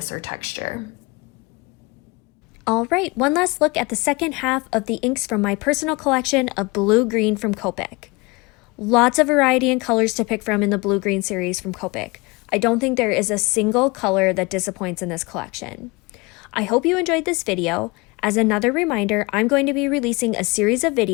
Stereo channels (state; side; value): quieter; right; 25.9 dB